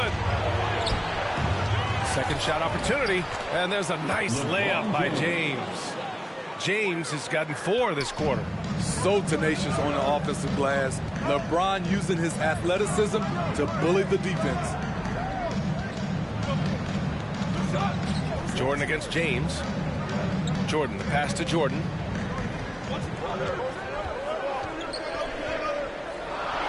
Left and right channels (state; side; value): identical; both; correlation 1.00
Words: Second shot opportunity, and there's a nice layup by James. James has gotten 4 this quarter. So tenacious on the offensive glass. LeBron using his athleticism to bully the defense. Jordan against James. Jordan, the pass to Jordan.